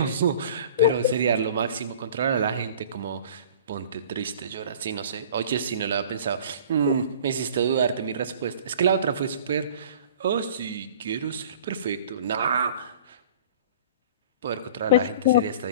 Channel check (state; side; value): inverted; both; correlation -0.45